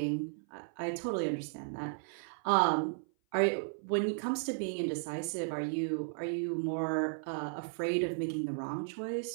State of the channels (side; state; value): left; silent; 55 dB below the other